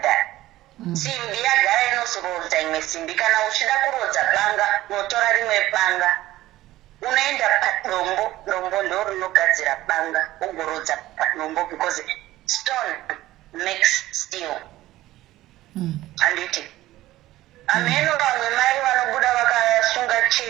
that. Simbi yagara inozorodza imwe simbi. Kana uchida kurodza banga unotora rimwe banga unoenda padombo, dombo ndo rinogadzira banga ugorodza padombo because stone makes steel. Handiti ameno vamwe mai vanobuda vakasunga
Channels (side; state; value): left; quieter; 15.9 dB